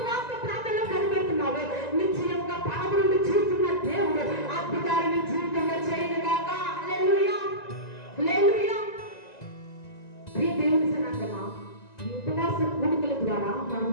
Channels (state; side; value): late; right; 1.9 ms